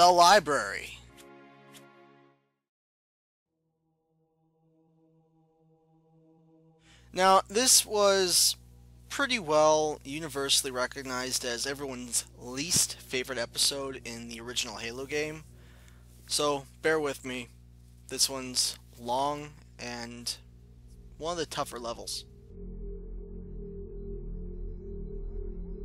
Library. Now, this was pretty well universally recognized as everyone's least favorite episode in the original Halo game. So, bear with me. This one's long and one of the tougher levels.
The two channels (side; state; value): both; identical; correlation 1.00